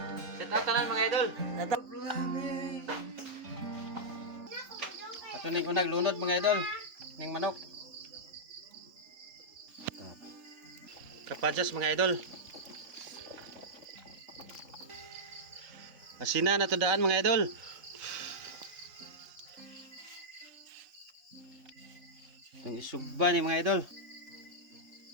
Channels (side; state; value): left; late; 3.9 ms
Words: Shout out tanan mga idol. Shout out. Ato ning unag lunod mga idol. Ning manok. Kapajas mga idol. Asina na to daan mga idol. Ang isugba ni mga idol.